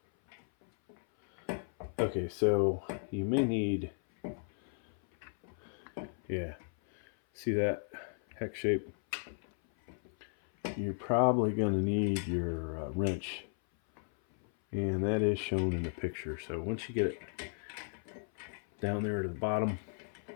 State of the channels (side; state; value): right; silent; 54 dB below the other